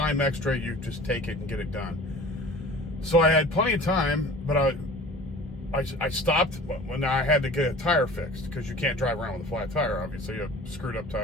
extra, you just take it and get it done. So I had plenty of time, but I stopped when I had to get a tire fixed, because you can't drive around with a flat tire, obviously. You have a screwed up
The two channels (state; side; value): normal; both; correlation 0.42